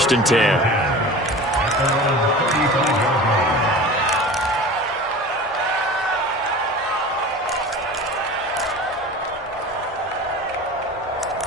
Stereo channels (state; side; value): normal; both; correlation 0.36